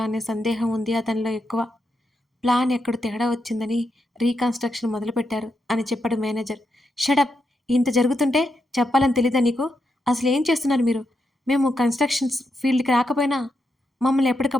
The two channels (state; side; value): normal; both; correlation 0.83